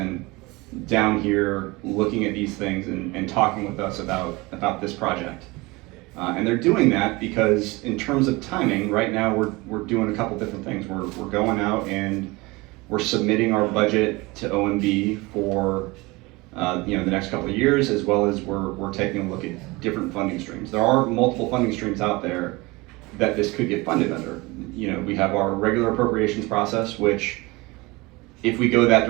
down here looking at these things and talking with us about this project. And they're doing that because in terms of timing, right now we're doing a couple different things. We're going out and we're submitting our budget to OMB for the next couple of years, as well as we're taking a look at different funding streams. There are multiple funding streams out there that this could get funded under. We have our regular appropriations process, which if we go that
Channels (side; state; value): left; quieter; 23.3 dB